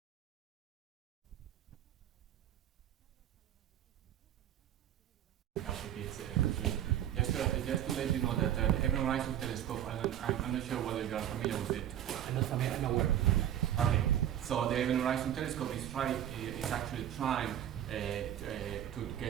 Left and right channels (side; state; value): left; quieter; 11.0 dB